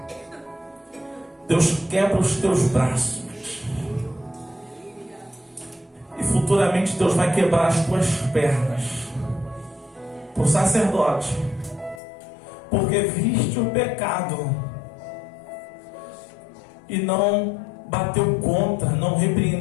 Deus quebra os teus braços. E futuramente Deus vai quebrar as tuas pernas. Por sacerdote. Porque viste o pecado e não bateu contra, não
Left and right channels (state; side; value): drops out; right; at 12.0 s